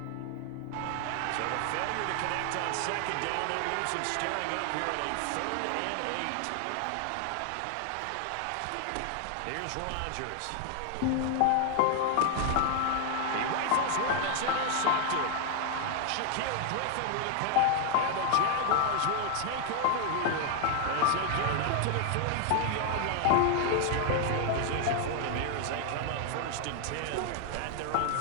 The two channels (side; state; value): both; different; correlation 0.00